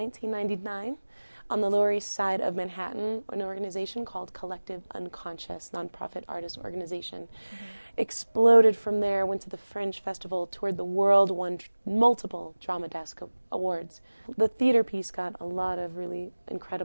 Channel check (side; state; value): both; inverted; correlation -1.00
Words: on the Lower East Side of Manhattan, an organization called Collective Unconscious, nonprofit artist organization. Exploded from there, went to the Fringe Festival, toured the world, won multiple Drama Desk awards. The theater piece got a lot of really